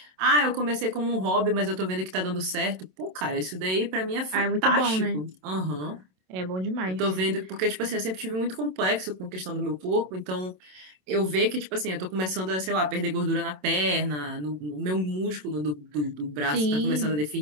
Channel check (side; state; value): left; late; 27 ms